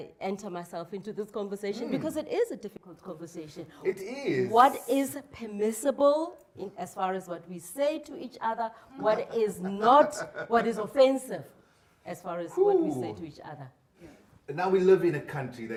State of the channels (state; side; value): identical; both; correlation 1.00